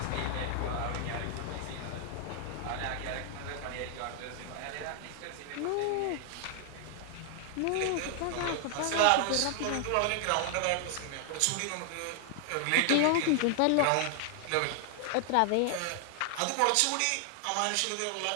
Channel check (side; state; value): both; different; correlation 0.00